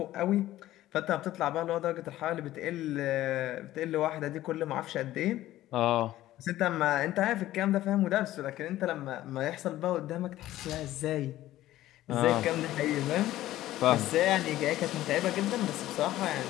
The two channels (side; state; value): right; quieter; 14.7 dB